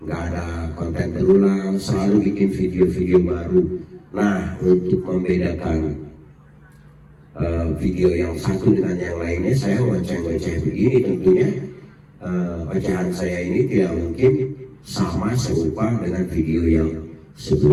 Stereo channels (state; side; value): identical; both; correlation 1.00